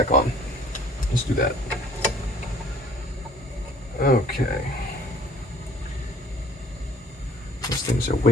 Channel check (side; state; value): both; normal; correlation 0.55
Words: on. Let's do that. Okay. These things are